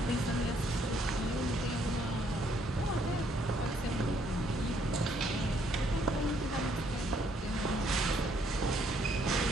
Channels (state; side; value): normal; both; correlation 0.68